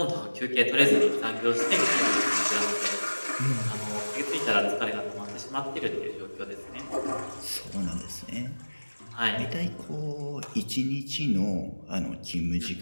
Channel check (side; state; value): both; inverted; correlation -1.00